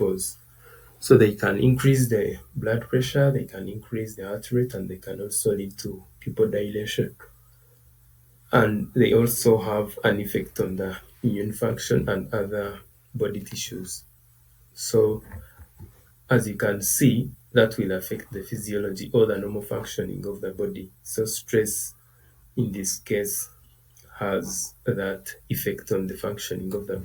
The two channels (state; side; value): identical; both; correlation 1.00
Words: So they can increase the blood pressure, they can increase the heart rate, and they can also lead to pupil dilation. And they also have an effect on the immune function and other body tissues. So as you can see, that will affect the physiology or the normal functioning of the body. So stress in this case has that effect on the functioning of the